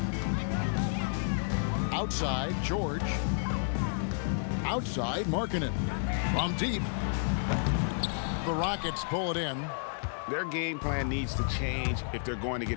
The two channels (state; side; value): silent; right; digital silence